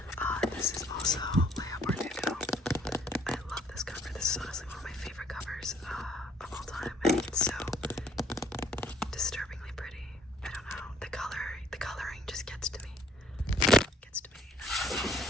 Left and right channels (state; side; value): normal; both; correlation 0.63